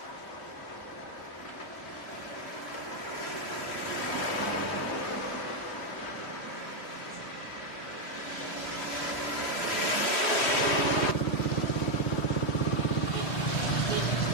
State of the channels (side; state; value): right; late; 3.0 ms